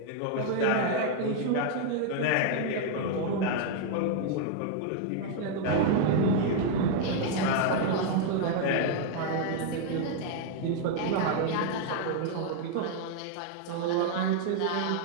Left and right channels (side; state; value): both; different; correlation 0.00